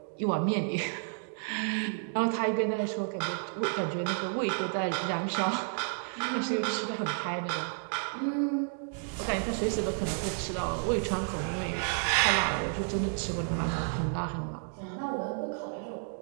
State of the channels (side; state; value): left; silent; 57 dB below the other